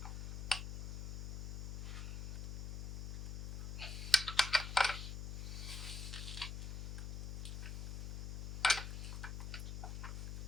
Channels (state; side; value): noise; left; hum, 4 dB below the sound